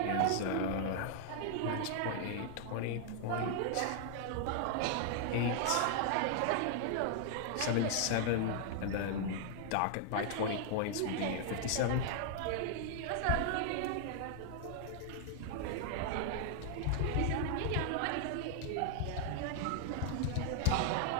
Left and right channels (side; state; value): both; different; correlation 0.00